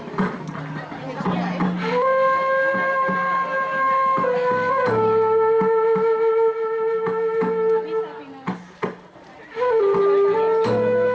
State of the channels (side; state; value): both; identical; correlation 1.00